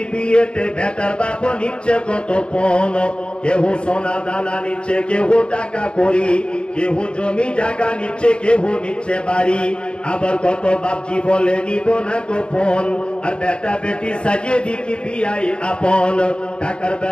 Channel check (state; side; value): late; right; 0.053 ms